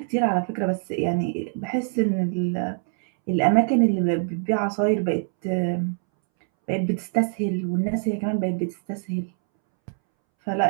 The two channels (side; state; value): left; silent; 63 dB below the other